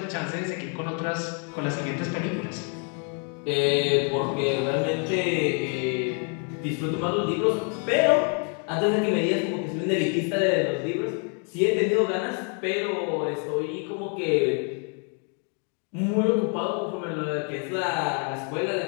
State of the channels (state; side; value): quieter; right; 38.5 dB